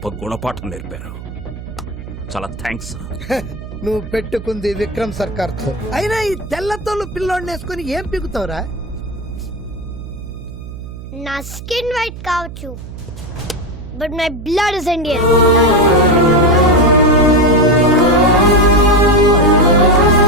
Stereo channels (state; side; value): noise; right; hum, 12 dB below the sound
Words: గుణపాఠం నేర్పారు. చాలా థ్యాంక్స్. నువ్వు పెట్టుకుంది విక్రమ్ సర్కార్ తో. అయినా ఈ తెల్లతోళ్ళు పిల్లోడిని వేసుకొని ఏం పీకుతావురా? నా స్కిన్ వైట్ కావచ్చు, but my blood is Indian.